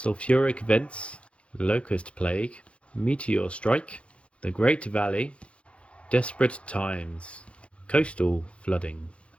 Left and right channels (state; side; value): late; right; 0.061 ms